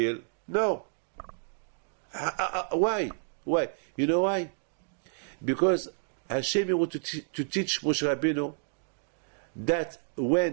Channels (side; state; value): left; silent; digital silence